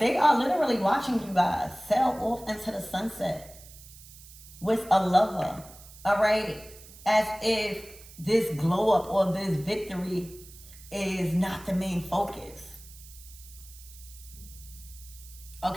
are literally watching you guys sail off into the sunset with a lover, all right, as if this glow up or this victory is not the main focus.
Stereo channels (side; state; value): right; noise; hiss, 19 dB below the sound